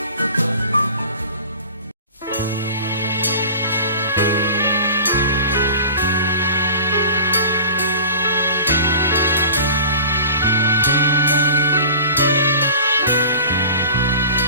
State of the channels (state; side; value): inverted; both; correlation -0.39